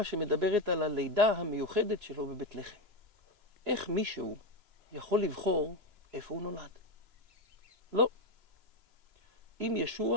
שמדברת על הלידה המיוחדת שלו בבית לחם. איך מישהו יכול לבחור איפה הוא נולד? לא. אם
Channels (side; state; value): left; late; 3.0 ms